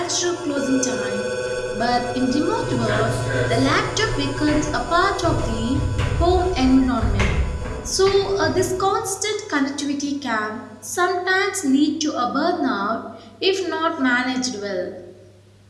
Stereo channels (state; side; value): identical; both; correlation 1.00